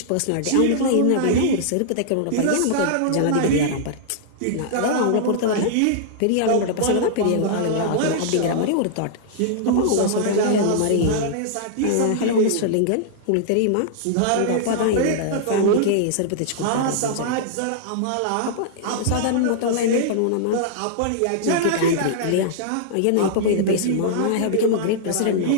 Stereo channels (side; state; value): both; different; correlation -0.02